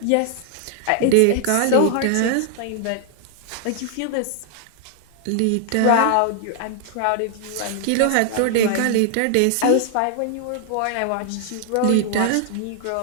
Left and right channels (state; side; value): different; both; correlation 0.00